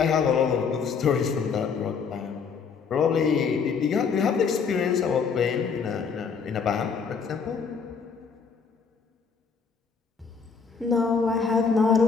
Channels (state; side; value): quieter; right; 5.8 dB